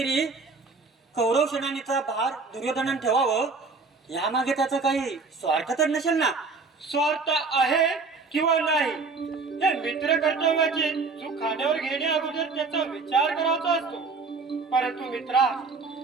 कौरव सेनानीचा भार दुर्योधनाने ठेवावं, यामागे त्याचा काही स्वार्थ तर नसेल ना. स्वार्थ आहे किंवा नाही, हे मित्र कर्तव्याची चूक खांद्यावर घेण्या अगोदर त्याचा विचार करायचा असतो. परंतु मित्रा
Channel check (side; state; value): left; quieter; 4.3 dB